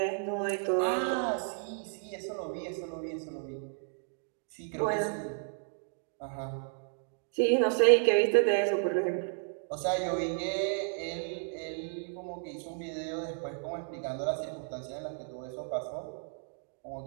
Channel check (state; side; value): silent; left; 56 dB below the other